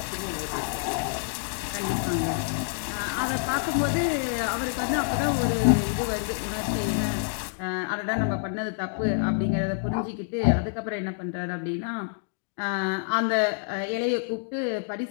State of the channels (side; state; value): right; silent; 60 dB below the other